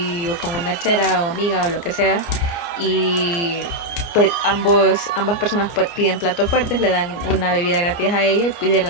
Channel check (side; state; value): right; late; 29 ms